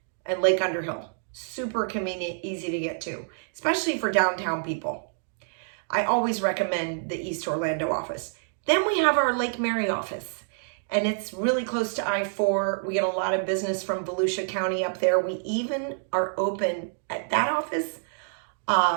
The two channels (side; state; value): left; silent; digital silence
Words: and Lake Underhill. Super convenient, easy to get to, especially for downtown people. I always recommend the East Orlando office. Then we have our Lake Mary office, and it's really close to I-4. We get a lot of business from Volusia County up there. We even are open at that office.